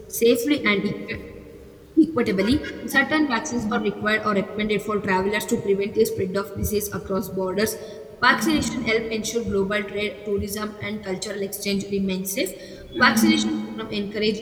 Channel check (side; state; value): both; identical; correlation 1.00